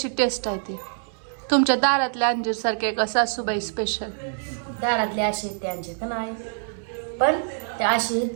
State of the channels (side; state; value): left; silent; digital silence